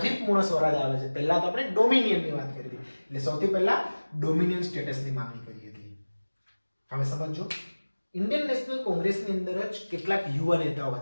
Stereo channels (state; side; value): inverted; both; correlation -1.00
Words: પૂર્ણ સ્વરાજ આવે છે, પહેલા તો આપણે ડોમિનિયનની વાત કરી હતી, એટલે સૌથી પહેલા ડોમિનિયન સ્ટેટસની માંગણી કરી હતી. હવે સમજો, ઇન્ડિયન નેશનલ કોંગ્રેસની અંદર જ કેટલાક યુવા નેતાઓ